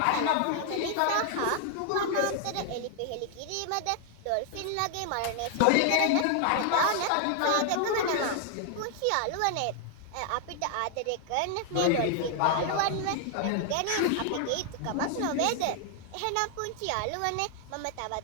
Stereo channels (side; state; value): both; different; correlation 0.00